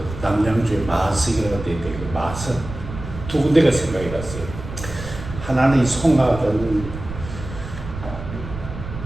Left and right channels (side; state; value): right; noise; rumble, 10 dB below the sound